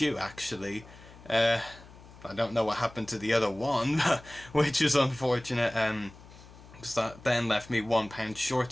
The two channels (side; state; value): left; noise; hum, 20 dB below the sound